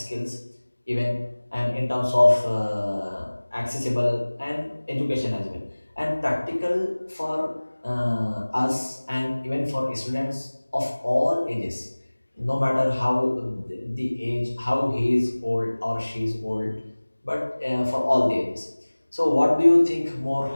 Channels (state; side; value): inverted; both; correlation -1.00